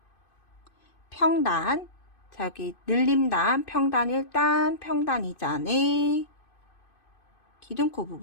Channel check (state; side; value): late; right; 2.5 ms